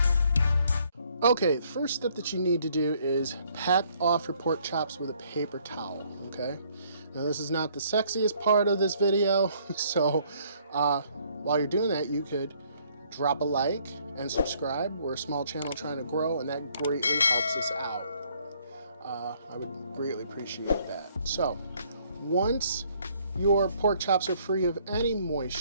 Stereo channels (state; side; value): inverted; both; correlation -0.65